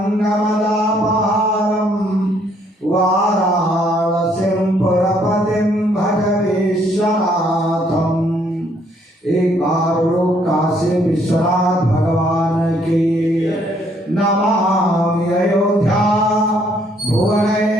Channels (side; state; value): both; normal; correlation 0.67